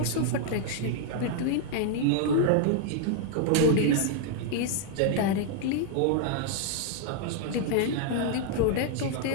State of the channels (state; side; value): different; both; correlation 0.00